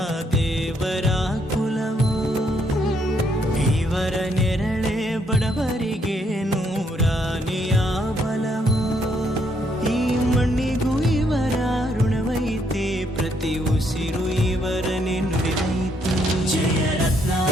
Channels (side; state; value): both; normal; correlation 0.72